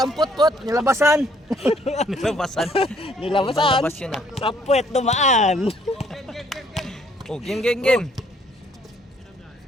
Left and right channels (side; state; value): both; normal; correlation 0.65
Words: put. Nilabasan. Nilabasan. Nilabasan. Nilabas yun ah. Sa puwet dumaan. Oh, game.